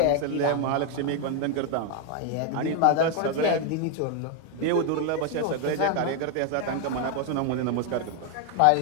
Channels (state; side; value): different; both; correlation 0.01